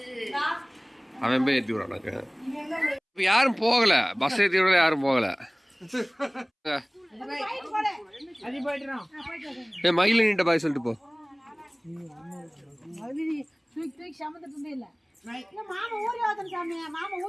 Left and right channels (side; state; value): both; identical; correlation 1.00